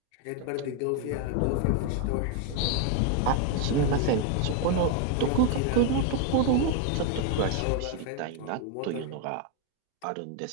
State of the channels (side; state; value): both; different; correlation 0.01